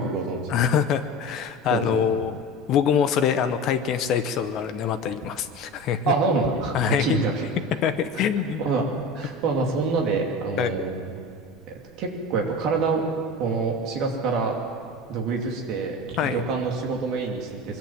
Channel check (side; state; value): right; noise; rumble, 26 dB below the sound